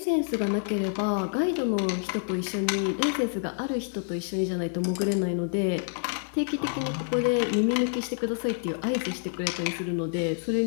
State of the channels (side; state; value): right; silent; digital silence